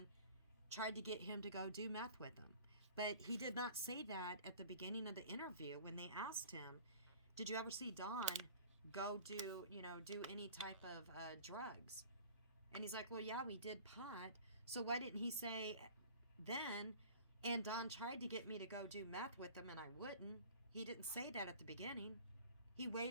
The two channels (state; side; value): inverted; both; correlation -0.44